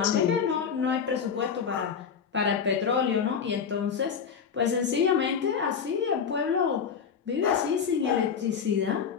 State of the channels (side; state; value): right; quieter; 6.8 dB